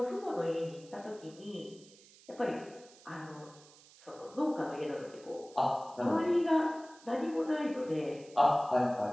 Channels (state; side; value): noise; right; hiss, 24 dB below the sound